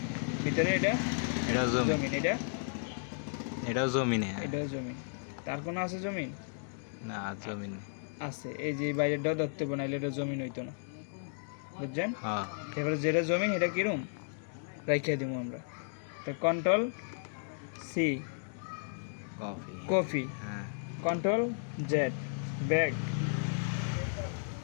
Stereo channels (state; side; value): silent; right; digital silence